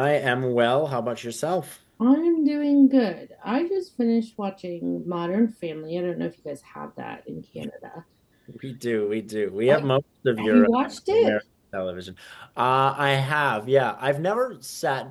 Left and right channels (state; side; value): identical; both; correlation 1.00